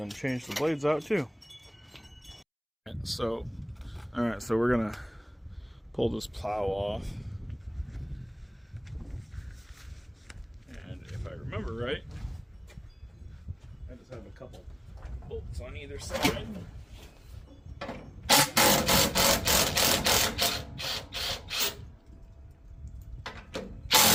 change the blades out too. So, alright, so we're gonna pull this plow off. And if I remember right, I just have a couple bolts on either side.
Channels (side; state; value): both; identical; correlation 1.00